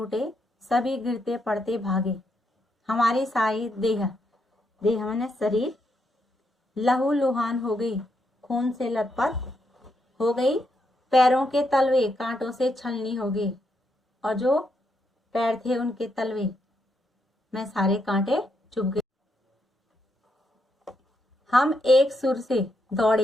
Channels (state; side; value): normal; both; correlation 0.79